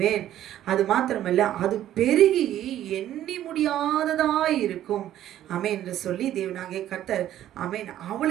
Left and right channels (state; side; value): quieter; left; 12.2 dB